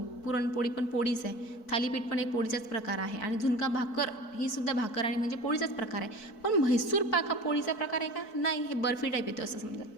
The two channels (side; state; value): right; late; 4.6 ms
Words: पुरणपोळी पण पोळीच आहे. थालीपीठ पण एक पोळीचाच प्रकार आहे. आणि झुणका भाकर ही सुद्धा भाकर आणि म्हणजे पोळीचाच प्रकार आहे. पण म्हैसूर पाक हा पोळीचा प्रकार आहे का? नाही. हे बर्फी टाईप येतो असं समजा,